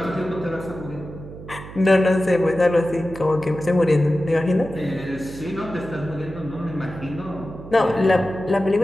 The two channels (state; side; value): noise; right; hum, 14 dB below the sound